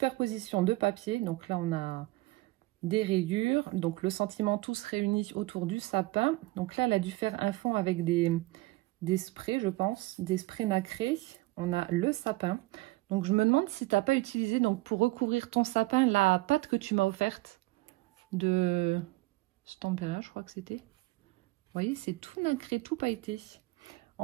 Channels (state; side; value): quieter; left; 20.2 dB